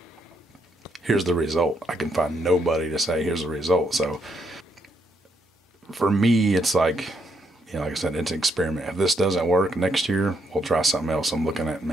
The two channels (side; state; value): both; normal; correlation 0.75